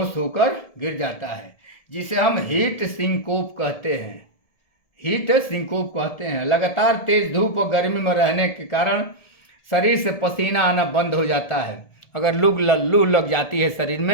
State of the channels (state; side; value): late; right; 1.7 ms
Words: होकर गिर जाता है, जिसे हम हीट सिंकोप कहते हैं। हीट सिंकोप कहते हैं। लगातार तेज धूप और गर्मी में रहने के कारण शरीर से पसीना आना बंद हो जाता है। अगर लू लग जाती है शरीर